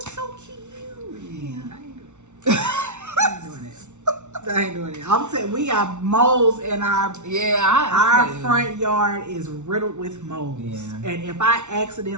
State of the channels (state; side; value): late; left; 0.83 ms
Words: so cute. I ain't doing it. I'm saying we got moles in our our front yard is riddled with moles. And if I